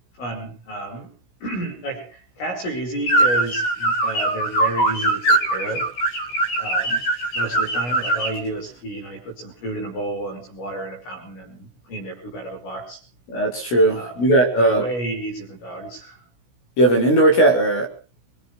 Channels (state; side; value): late; right; 16 ms